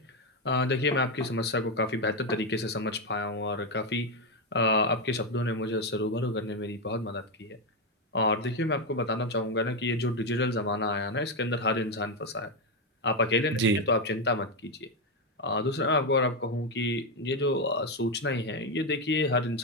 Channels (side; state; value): both; normal; correlation 0.07